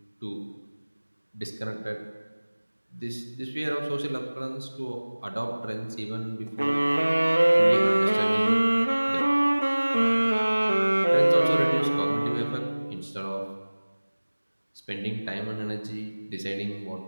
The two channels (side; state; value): both; inverted; correlation -1.00